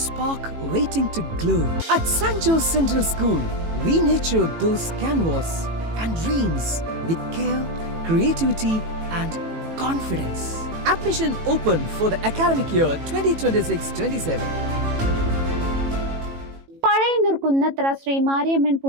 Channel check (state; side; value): late; left; 18 ms